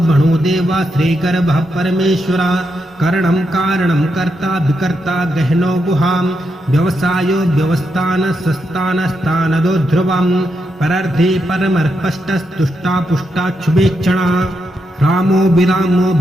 बणो देवा श्रीगर्भः परमेश्वरा करणं कारणं कर्ता विकर्ता गहनो गुहाम् व्यवसायो व्यवस्थान सस्तानस्तानदो ध्रुवम् परर्धे परमर्पष्टस्तुष्टा पुष्टाक्षुभेक्षणा रामो विरामो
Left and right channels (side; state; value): both; normal; correlation 0.83